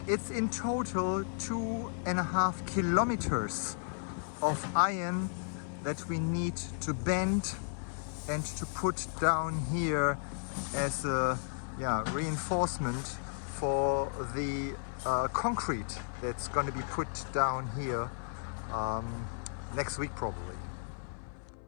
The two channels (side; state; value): right; silent; 55 dB below the other